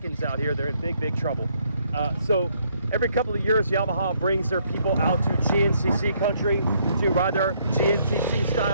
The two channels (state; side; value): inverted; both; correlation -0.69